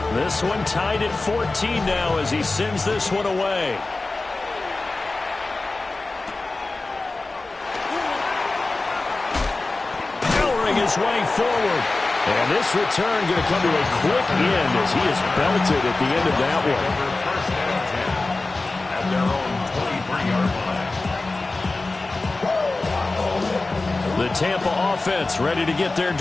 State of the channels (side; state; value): right; quieter; 3.3 dB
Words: This one tied at 14 now as he sends this one away. Powering his way forward. And this return going to come to a quick end as he is belted at the end of that one. At their own 23-yard line. The Tampa offense ready to get their